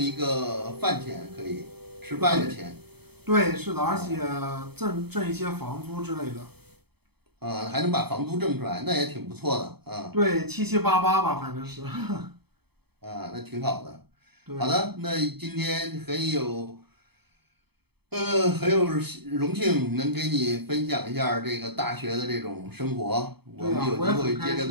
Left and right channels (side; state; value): left; late; 0.97 ms